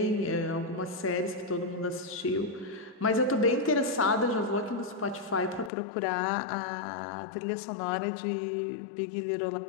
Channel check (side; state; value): right; drops out; at 5.7 s